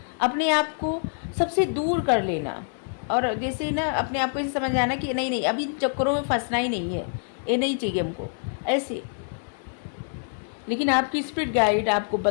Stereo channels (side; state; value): right; silent; digital silence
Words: अपने आप को सबसे दूर कर लेना और जैसे ना अपने आप को ऐसे समझ आना कि नहीं नहीं अभी चक्करों में फंसना ही नहीं है, ये नहीं चाहिए हमको ऐसे। लेकिन आपकी स्पिरिट गाइड आपको